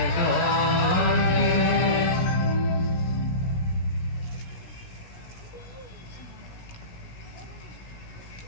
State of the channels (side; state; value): right; late; 17 ms